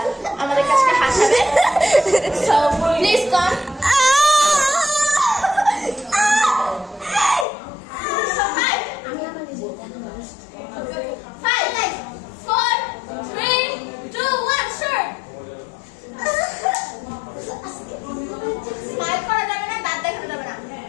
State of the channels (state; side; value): drops out; right; at 7.5 s